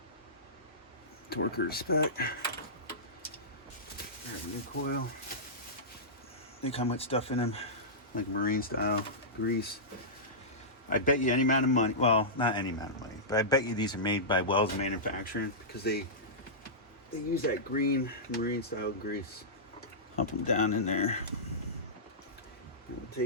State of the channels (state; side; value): normal; both; correlation -0.16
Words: Torquer spec. There's a new coil. They come with stuff in them, like marine style grease. I bet you any amount of money, well, not any amount of money, but I bet you these are made by Wells Manufacturing, because they use that green marine style grease. Pump them down in there. And we'll